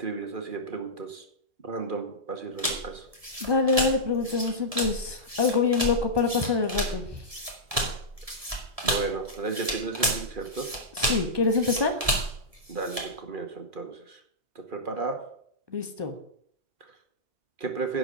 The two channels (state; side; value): late; left; 1.7 ms